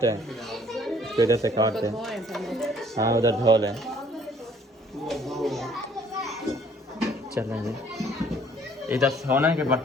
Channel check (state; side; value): normal; both; correlation 0.60